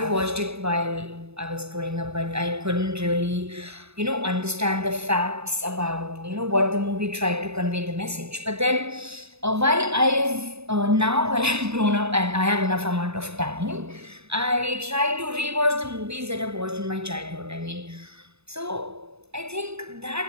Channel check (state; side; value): late; left; 0.79 ms